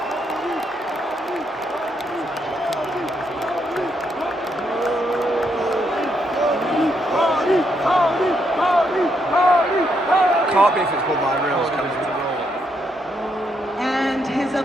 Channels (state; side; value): normal; both; correlation 0.77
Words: Party! can't be if it's bloodline rules. And his